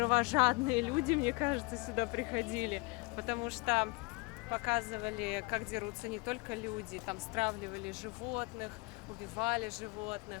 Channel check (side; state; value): right; quieter; 26.8 dB